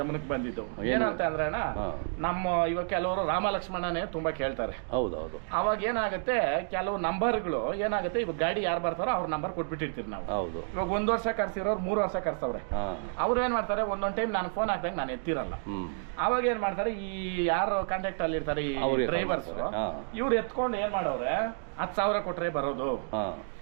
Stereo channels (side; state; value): left; silent; digital silence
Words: ಬಂದಿದ್ದು. ಏನಂತ ಅಂದ್ರೆ ಅಣ್ಣ, ನಮ್ಮ ಇವಾಗ ಕೆಲವರು ರಾಮ ಲಕ್ಷ್ಮಣನೇ ತುಂಬಾ ಕೇಳ್ತಾರೆ. ಹೌದೌದು. ಅವಾಗ ಏನಾಗುತ್ತೆ, ಕೆಲವು ನಂಬರ್ಗಳು ಏನಾಗುತ್ತೆ, ಇವಾಗ ಗಾಡಿ ಯಾರು ಬರ್ತಾರೋ ಅವ್ರ ನಂಬರ್ ಕೊಟ್ಬಿಟ್ಟಿರ್ತೀವಿ ನಾವು. ಇವಾಗ 1 ವರ್ಷ ಕರ್ಸಿರೋರು 3 ವರ್ಷ ಕರ್ಸವ್ರೆ. ಅವ್ರು ಏನ್ ಮಾಡ್ತಾರೆ, ಒಂದೊಂದ್ ಟೈಮ್ ನಾನು ಫೋನ್ ಹಾಕ್ದಾಗ ನಾನು ಎತ್ತಿರಲ್ಲ. ಅವಾಗ ಏನ್ ಮಾಡ್ತಾರೆ, ಈ ಯಾರು ಕಾಂಟ್ಯಾಕ್ಟ್ ಅಲ್ಲಿ ಇರ್ತಾರೆ ಈ ಡ್ರೈವರ್ಸ್, ಇವ್ರು ಎತ್ಕೊಂಡು ಏನ್ ಮಾಡವ್ರೆ, 10,000 ಕೊಟ್ರೆ ಬರೋದು,